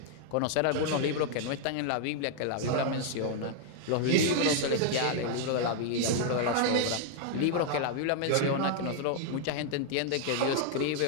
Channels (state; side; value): different; both; correlation 0.00